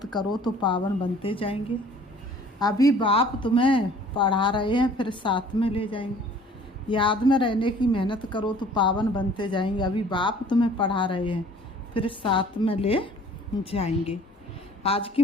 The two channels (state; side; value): normal; both; correlation 0.52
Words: करो तो पावन बनते जाएंगे। अभी बाप तुम्हें पढ़ा रहे हैं, फिर साथ में ले जाएंगे। याद में रहने की मेहनत करो तो पावन बनते जाएंगे। अभी बाप तुम्हें पढ़ा रहे हैं, फिर साथ में ले जाएंगे। आज की